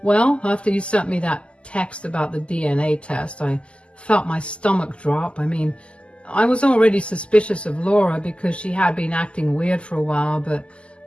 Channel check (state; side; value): late; right; 0.054 ms